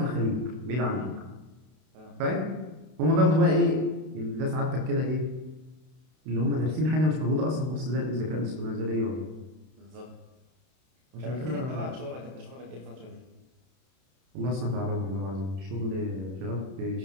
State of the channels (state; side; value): late; left; 32 ms